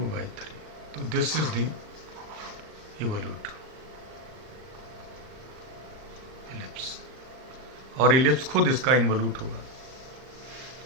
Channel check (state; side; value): late; left; 39 ms